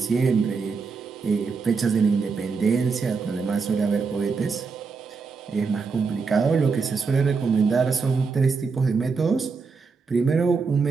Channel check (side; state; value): left; quieter; 4.9 dB